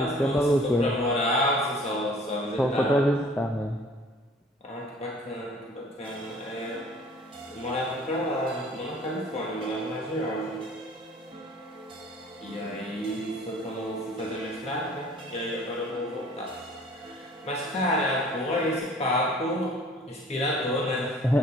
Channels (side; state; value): both; normal; correlation 0.51